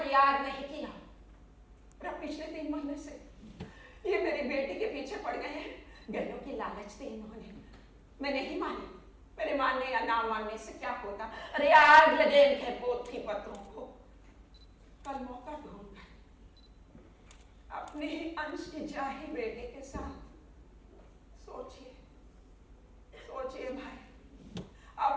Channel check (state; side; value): identical; both; correlation 1.00